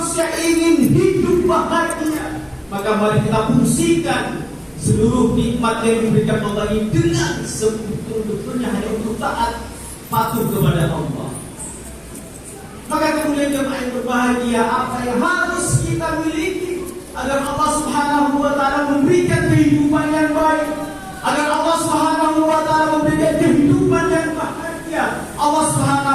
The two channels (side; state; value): both; identical; correlation 1.00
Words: ingin hidup bahagia, maka mari kita fungsikan seluruh nikmat yang diberikan Allah ini dengan sebetul-betulnya hanya untuk taat patuh kepada Allah. Maka kemudian jemaah yang berbahagia, apa yang harus kita miliki agar Allah Subhanahu wa Ta'ala memberikan kehidupan yang baik, agar Allah Subhanahu wa Ta'ala memberikan kehidupan yang bahagia, Allah